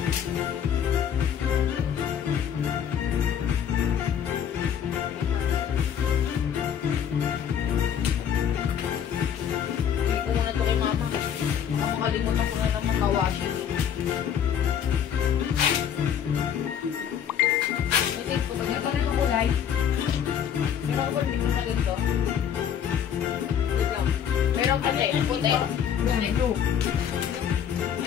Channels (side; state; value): right; quieter; 8.7 dB